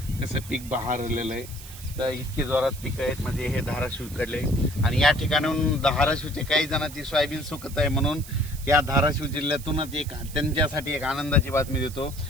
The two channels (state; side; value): noise; right; hiss, 16 dB below the sound